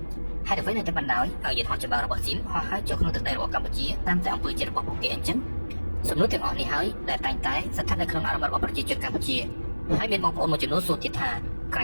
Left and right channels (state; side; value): inverted; both; correlation -1.00